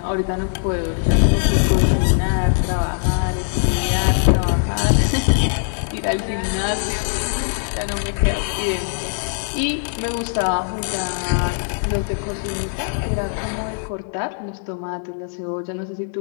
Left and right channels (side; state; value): right; silent; 64 dB below the other